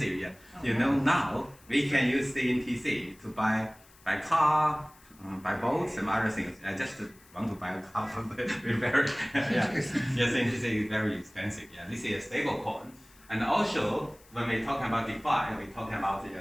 yeah. Now we can use CNTC to buy car, buy boats, and other things. I just want to buy a car, but very, CNTC is very expensive. Yeah, this is a stable coin. And also, when we're talking about DeFi, we're talking about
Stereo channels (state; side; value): noise; left; hiss, 27 dB below the sound